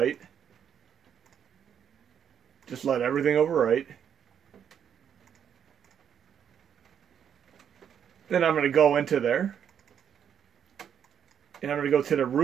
Just let everything overwrite. Then I'm going to go into there. And I'm going to go to the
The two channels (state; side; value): quieter; left; 8.5 dB